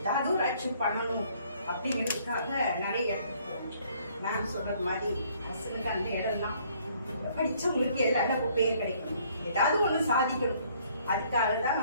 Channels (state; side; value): inverted; both; correlation -0.62